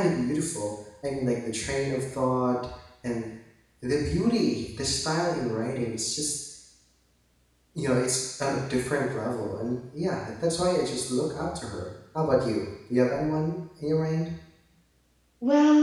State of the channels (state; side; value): identical; both; correlation 1.00